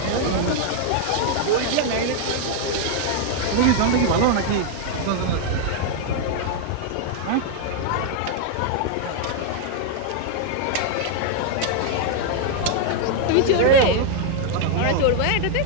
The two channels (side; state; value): both; different; correlation 0.00